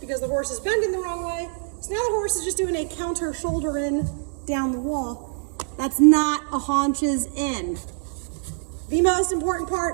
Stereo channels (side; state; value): left; silent; 62 dB below the other